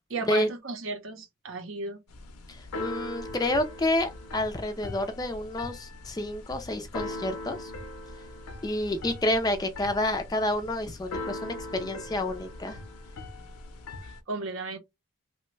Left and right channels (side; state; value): both; normal; correlation 0.43